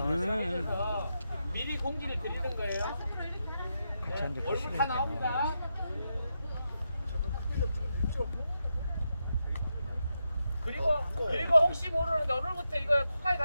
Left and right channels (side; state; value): both; inverted; correlation -0.86